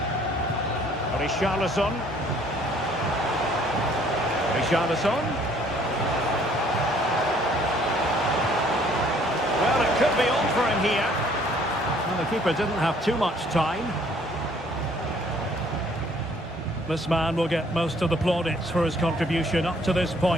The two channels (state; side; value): normal; both; correlation 0.60